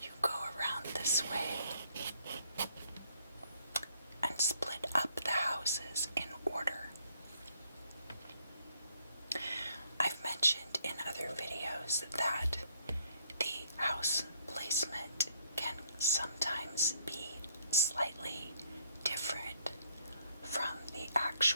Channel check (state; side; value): inverted; both; correlation -0.67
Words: you go around this way and split up the houses in order. I've mentioned in other videos that the house placement can sometimes be slightly different from the